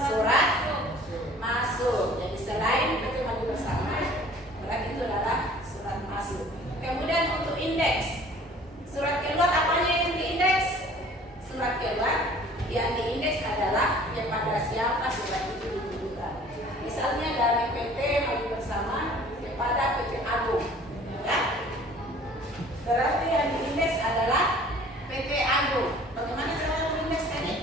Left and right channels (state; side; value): normal; both; correlation 0.50